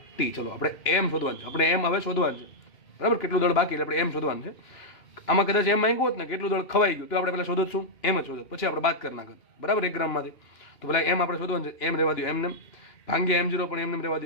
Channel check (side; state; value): right; late; 2.9 ms